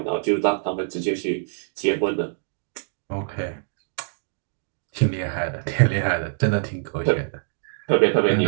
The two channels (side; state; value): left; silent; digital silence